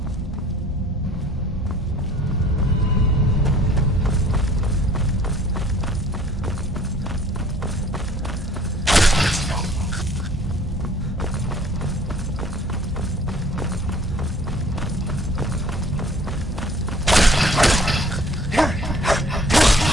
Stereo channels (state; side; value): normal; both; correlation 0.54